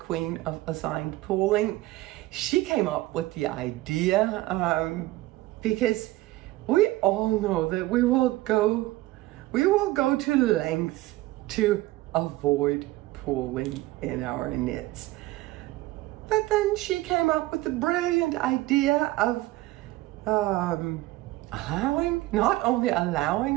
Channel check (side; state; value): left; quieter; 18.2 dB